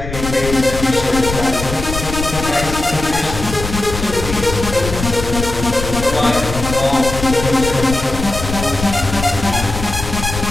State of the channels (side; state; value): left; noise; rumble, 7 dB below the sound